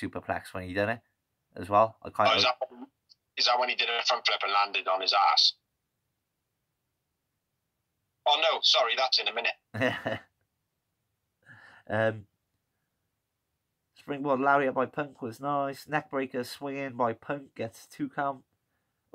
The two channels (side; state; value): both; identical; correlation 1.00